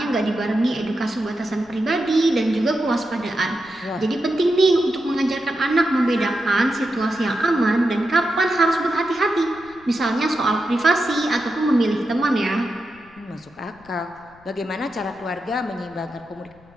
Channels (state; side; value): noise; left; rumble, 27 dB below the sound